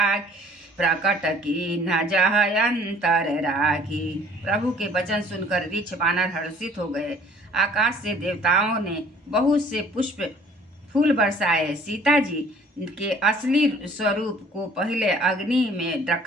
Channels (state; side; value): normal; both; correlation 0.54